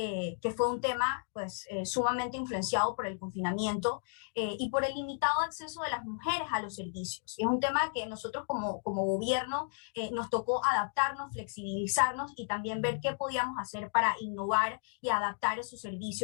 fue un tema pues, sumamente influenciado por el confinamiento y por el limitado acceso de las mujeres a los servicios. Y es un tema que nosotros como gobierno nos tocó adaptarnos, flexibilizarnos y también ver qué podíamos hacer para innovar y adaptar esos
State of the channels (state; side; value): silent; right; digital silence